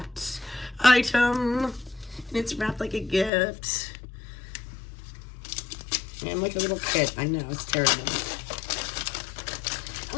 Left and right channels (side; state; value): right; drops out; at 3.3 s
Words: item. And it's wrapped like a gift. And like a little kid. I know, it's terrible.